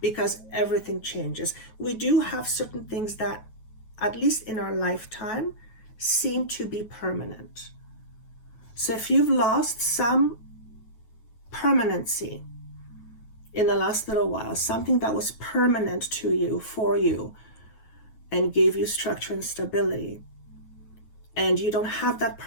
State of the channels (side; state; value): right; late; 9.2 ms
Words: because everything changes, we do have certain things that, at least in our lifetime, seem to be permanent. So if you've lost some permanency in the last little while, something that was permanent to you, for you, and gave you structure and stability, and you don't have that